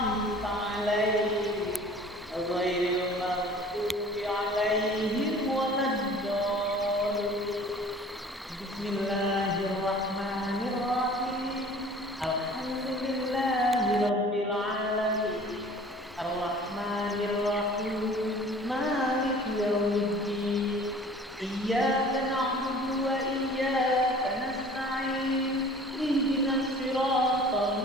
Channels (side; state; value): both; normal; correlation 0.47